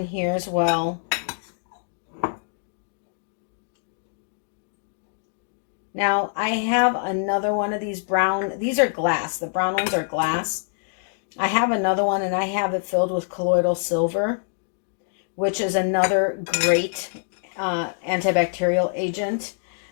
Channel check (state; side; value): silent; right; digital silence